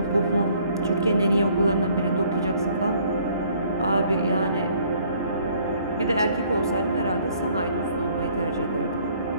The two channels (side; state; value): both; inverted; correlation -0.60